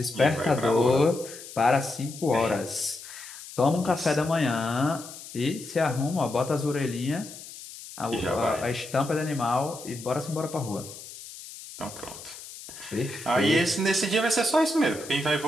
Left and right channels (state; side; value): noise; left; hiss, 14 dB below the sound